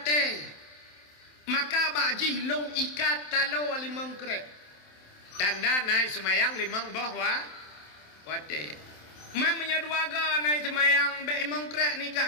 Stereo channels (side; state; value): right; late; 27 ms